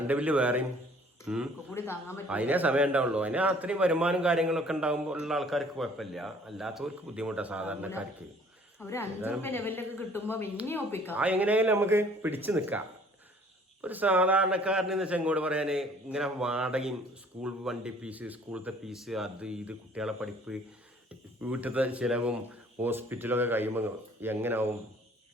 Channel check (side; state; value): both; normal; correlation 0.56